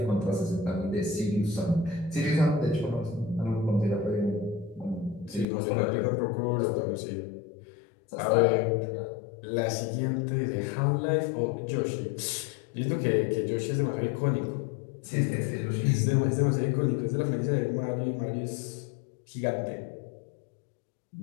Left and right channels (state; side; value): drops out; right; at 5.5 s